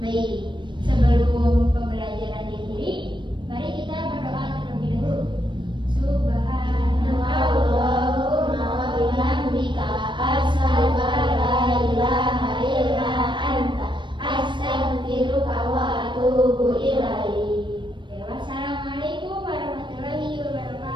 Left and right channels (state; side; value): late; left; 0.23 ms